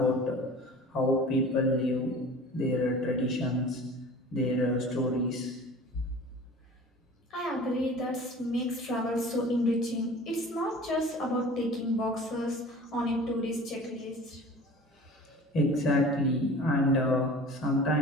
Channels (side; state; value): both; normal; correlation 0.42